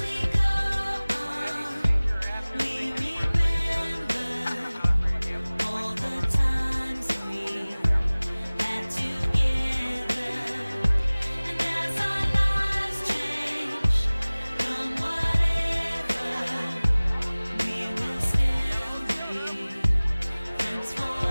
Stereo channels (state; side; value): inverted; both; correlation -1.00